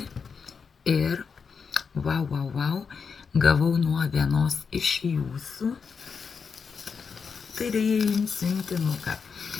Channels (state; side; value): quieter; right; 5.7 dB